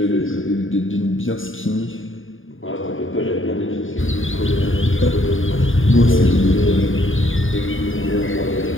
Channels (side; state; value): right; late; 0.58 ms